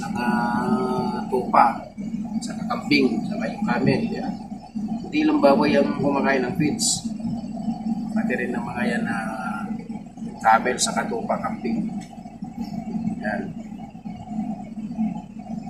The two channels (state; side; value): identical; both; correlation 1.00